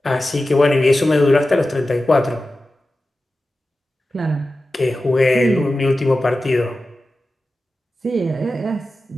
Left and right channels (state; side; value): normal; both; correlation 0.94